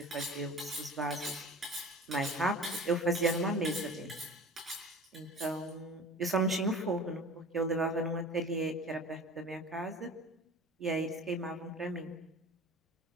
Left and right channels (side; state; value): both; normal; correlation 0.38